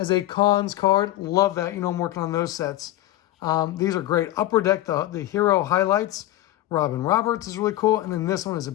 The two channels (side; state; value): right; quieter; 14.9 dB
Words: a Cons card. Love that. You know, I'm working on those sets. These are great. Upper Deck, the Hero Highlights. Robin Roberts is really cool. And then this one is a